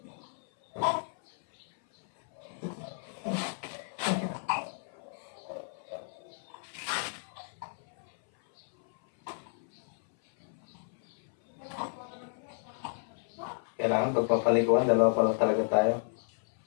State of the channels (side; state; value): right; silent; 56 dB below the other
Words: Kailangan pagpapaliguan, dalawa pa lang talaga tayo.